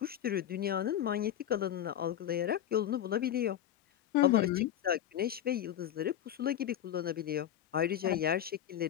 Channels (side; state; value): right; quieter; 10.9 dB